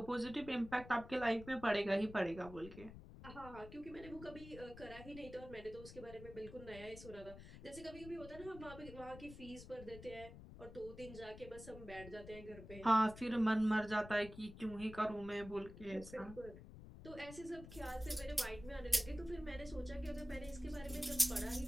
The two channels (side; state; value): left; noise; rumble, 14 dB below the sound